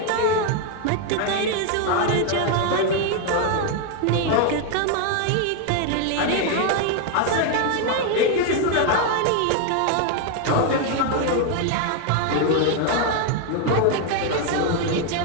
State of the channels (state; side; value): different; both; correlation 0.01